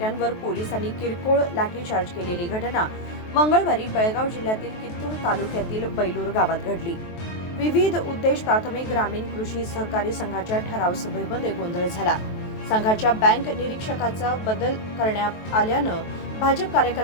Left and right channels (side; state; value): right; late; 23 ms